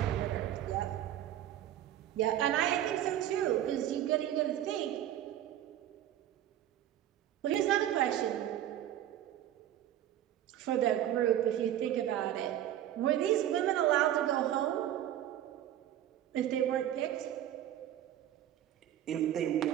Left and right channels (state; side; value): quieter; left; 11.9 dB